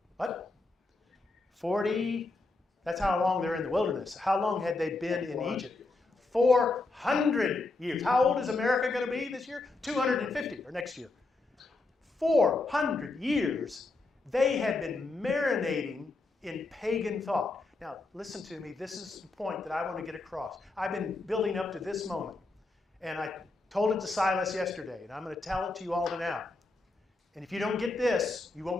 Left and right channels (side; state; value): right; quieter; 3.2 dB